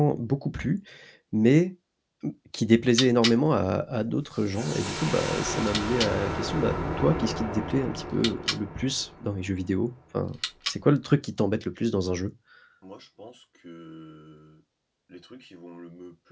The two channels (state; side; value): identical; both; correlation 1.00